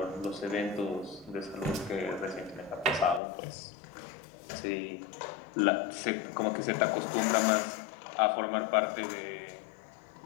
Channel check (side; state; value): right; drops out; at 3.2 s